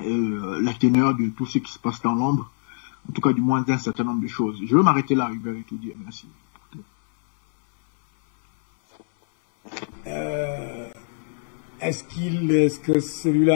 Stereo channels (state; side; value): silent; right; 56 dB below the other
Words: la teneur de tout ce qui se passe dans l'ombre, en tout cas du moins d'un certain nombre de choses. Je vais m'arrêter là, Hubert, et tout dire. Merci. Est-ce que